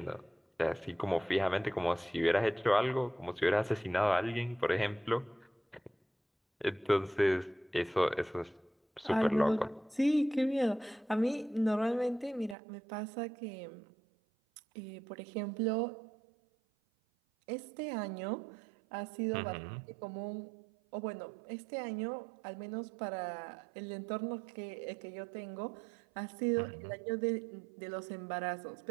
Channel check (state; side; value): drops out; left; at 12.6 s